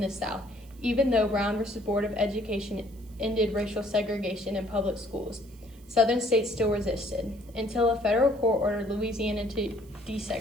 the South, even though Brown v. Board of Education ended racial segregation in public schools. Southern states still resisted, until a federal court ordered Louisiana to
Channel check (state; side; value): noise; right; hiss, 27 dB below the sound